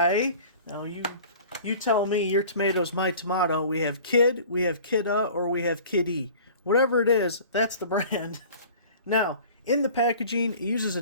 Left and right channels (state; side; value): inverted; both; correlation -0.44